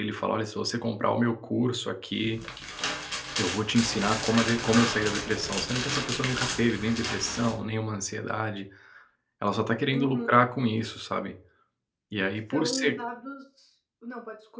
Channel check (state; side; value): identical; both; correlation 1.00